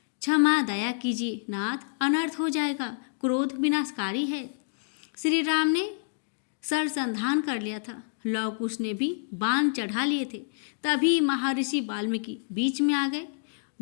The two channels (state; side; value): silent; right; digital silence